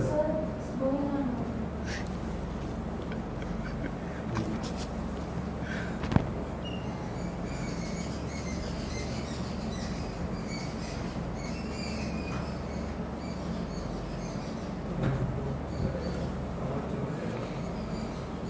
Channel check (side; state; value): both; identical; correlation 1.00